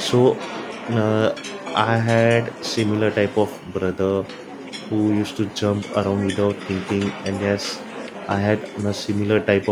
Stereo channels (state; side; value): identical; both; correlation 1.00